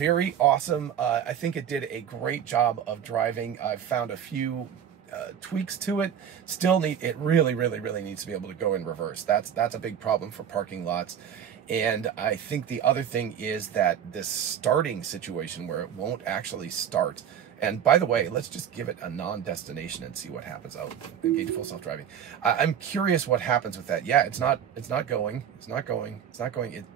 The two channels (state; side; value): quieter; left; 8.9 dB